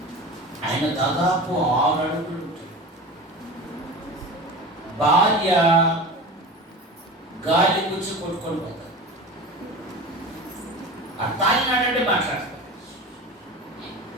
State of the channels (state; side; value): normal; both; correlation 0.32